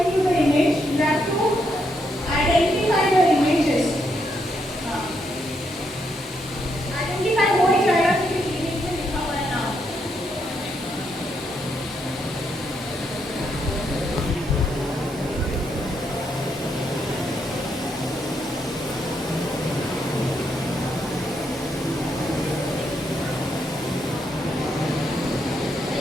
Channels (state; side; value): normal; both; correlation 0.78